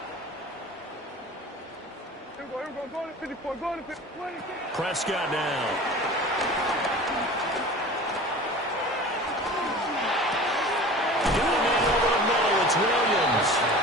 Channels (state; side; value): normal; both; correlation 0.39